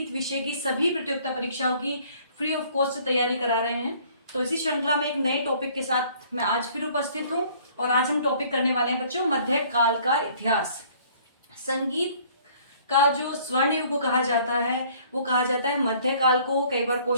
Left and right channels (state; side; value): inverted; both; correlation -0.57